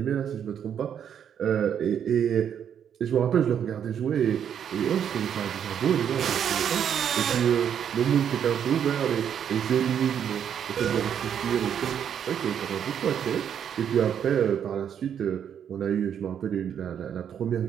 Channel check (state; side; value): quieter; left; 8.7 dB